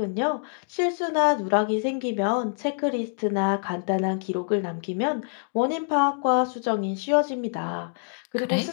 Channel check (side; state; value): right; silent; digital silence